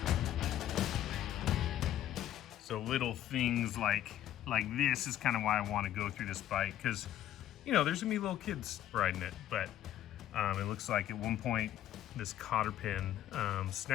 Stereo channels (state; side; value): quieter; right; 12.2 dB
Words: So little things like this is kind of why I want to go through this bike, because you know, there's gonna be little kids riding it, but it looks like at one point this cotter pin